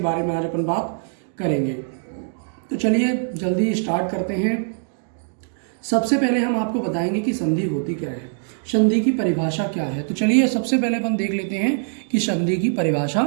में आज अपन बात करेंगे। तो चलिए जल्दी स्टार्ट करते हैं। सबसे पहले हम आपको बताएंगे कि संधि होती क्या है, संधि की परिभाषा क्या है। तो चलिए सबसे पहले अपन देख लेते हैं कि संधि की परिभाषा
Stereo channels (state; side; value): silent; left; digital silence